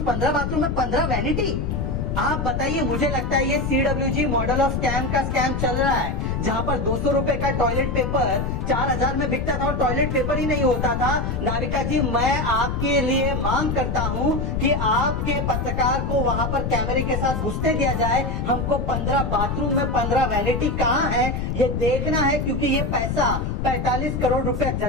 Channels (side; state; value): left; noise; rumble, 1 dB below the sound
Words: 15 बाथरूम में 15 वैनिटी। आप बताइए, मुझे लगता है ये CWG मॉडल ऑफ स्कैम का स्कैम चल रहा है, जहां पर 200 रुपए का टॉयलेट पेपर 4000 में बिकता था और टॉयलेट पेपर ही नहीं होता था। नाविका जी, मैं आपके लिए मांग करता हूं कि आपके पत्रकार को वहां पर कैमरे के साथ घुसने दिया जाए। हमको 15 बाथरूम में 15 वैनिटी कहां है ये देखना है, क्योंकि ये पैसा 45 करोड़ रुपए